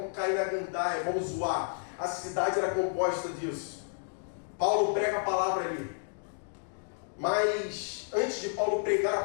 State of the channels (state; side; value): silent; right; digital silence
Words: cair na gandaia, vamos zoar. A cidade era composta disso. Paulo prega a palavra ali. Mas antes de Paulo pregar